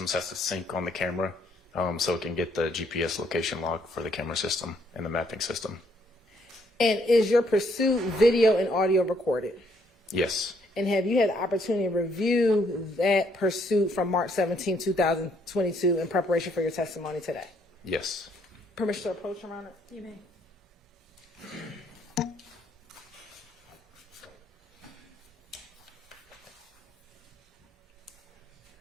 has to sync on the camera. so it can get the GPS location log for the camera system and the mapping system. And is your pursuit video and audio recorded? Yes. And have you had the opportunity to review that pursuit from March 17, 2022 in preparation for your testimony today? Yes. Permission to approach, Your Honor? You may.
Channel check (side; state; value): both; normal; correlation 0.69